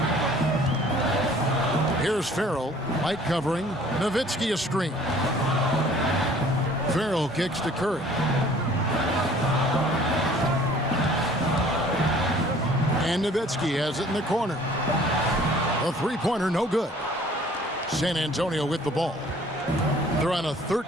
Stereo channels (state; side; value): normal; both; correlation 0.53